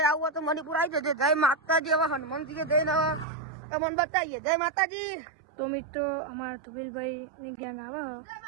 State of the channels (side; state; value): left; drops out; at 3.2 s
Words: આવું હોય તો મણિપુર આવી જજો જય માતાજી હવે હનુમાનજી જઈને તમને બતાવીએ જય માતાજી તો મિત્રો અમારા તુબીલભાઈ ની ગેંગ આવે